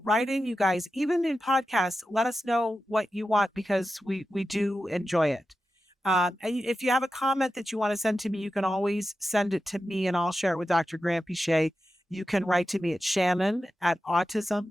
write in, you guys, even in podcasts, let us know what you want because we do enjoy it. And if you have a comment that you want to send to me, you can always send it to me and I'll share it with Dr. Granpeesheh. You can write to me at Shannon at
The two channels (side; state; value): both; normal; correlation 0.91